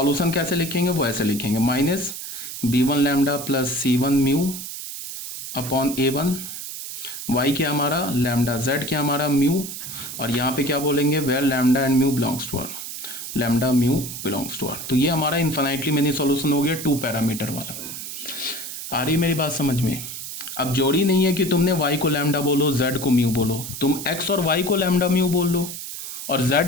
कैसे लिखेंगे, वो ऐसे लिखेंगे, minus b1 lambda plus c1 mu upon a1। y क्या हमारा लैम्डा, z क्या हमारा म्यू, और यहाँ पे क्या बोलेंगे, where lambda and mu belongs to R, lambda mu belongs to R. तो ये हमारा इन्फिनाइटली मेनी सॉल्यूशन हो गया टू पैरामीटर वाला। आ रही मेरी बात समझ में? अब जोड़ी नहीं है कि तुमने y को लैम्डा बोलो, z को म्यू बोलो, तुम x और y को लैम्डा म्यू बोल लो और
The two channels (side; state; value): right; noise; hiss, 8 dB below the sound